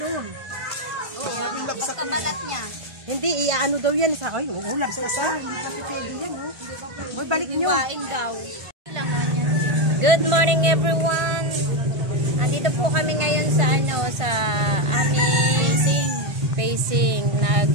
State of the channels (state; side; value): late; left; 1.5 ms